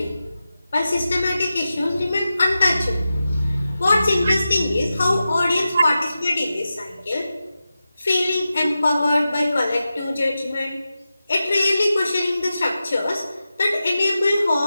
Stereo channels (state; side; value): inverted; both; correlation -0.92